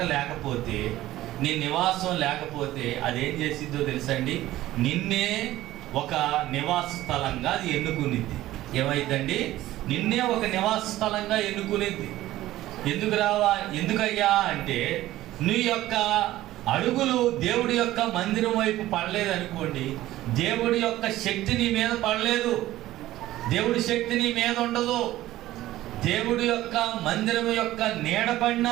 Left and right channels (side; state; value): left; quieter; 15.4 dB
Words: లేకపోతే, నీ నివాసం లేకపోతే అదేం చేసిందో తెలుసండి, నిన్నే ఒక నివాస స్థలంగా అది ఎన్నుకునిద్ది. ఏమైందండి? నిన్నే ఒక నివాస స్థలంగా ఎన్నుకునిద్ది. ఎందుకయ్యా అంటే, నీ యొక్క అడుగులు దేవుడి యొక్క మందిరం వైపు పడలేదు అనుకోండి, దేవుడి యొక్క శక్తి నీ మీద పడలేదు, దేవుడి శక్తి నీ మీద ఉండదు. దేవుడి యొక్క మందిరం యొక్క నీడ